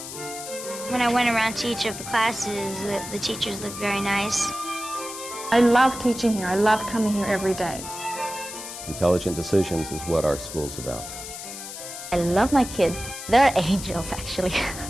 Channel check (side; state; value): left; noise; hiss, 10 dB below the sound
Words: When I went around to each of the classes, the teachers looked very nice. I love teaching here. I love coming here every day. Intelligent decisions is what our school's about. I love my kids. They're angels, actually.